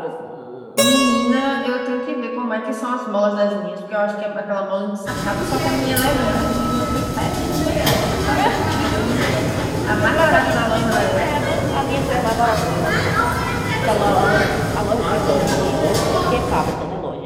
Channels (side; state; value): both; identical; correlation 1.00